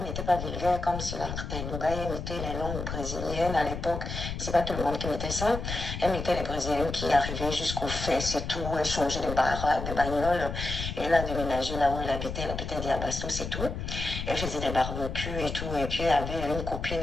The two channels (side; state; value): left; noise; rumble, 5 dB below the sound